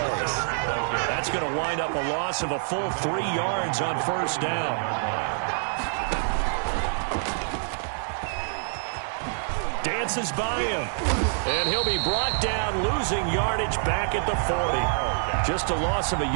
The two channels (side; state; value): left; silent; digital silence